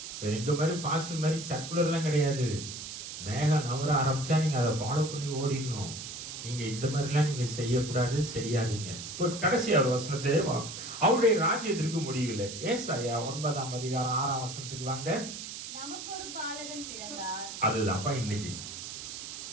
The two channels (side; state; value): right; noise; hiss, 9 dB below the sound